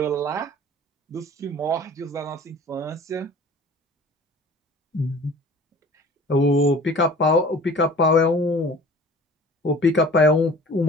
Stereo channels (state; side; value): normal; both; correlation 0.45